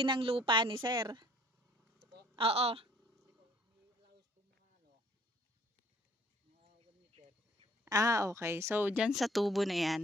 ng lupa ni sir? Oo. Okay. So, dyan sa tubo na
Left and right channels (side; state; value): both; normal; correlation 0.58